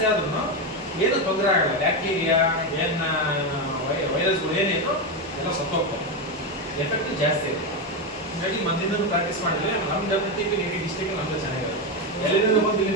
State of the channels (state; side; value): normal; both; correlation 0.11